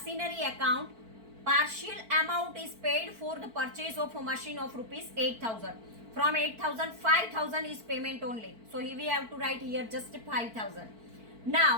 account partial amount is paid for the purchase of a machine of rupees 8,000. From 8,000 5,000 is payment only. So we have to write here just 5,000.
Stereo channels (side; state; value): left; late; 4.5 ms